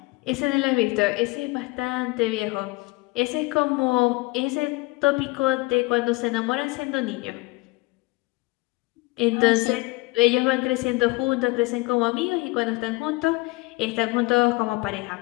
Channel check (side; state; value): right; quieter; 23.0 dB